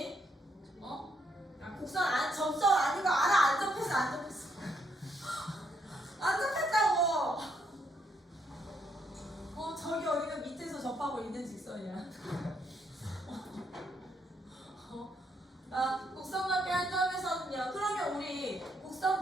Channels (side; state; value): both; normal; correlation 0.74